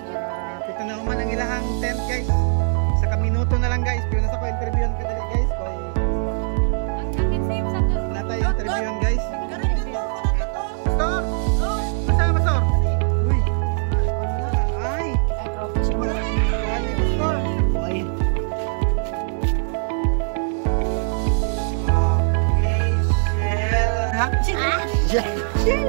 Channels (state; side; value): silent; left; digital silence